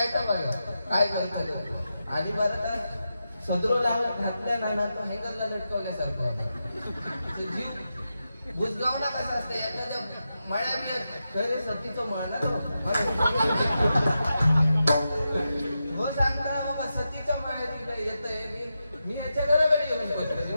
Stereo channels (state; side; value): inverted; both; correlation -0.89